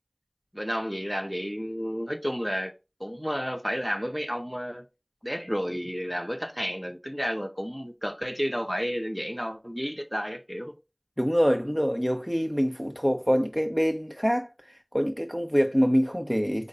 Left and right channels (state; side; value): identical; both; correlation 1.00